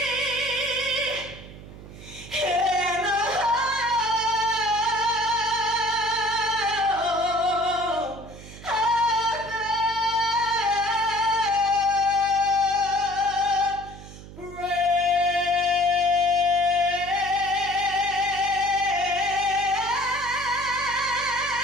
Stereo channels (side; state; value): right; noise; hum, 16 dB below the sound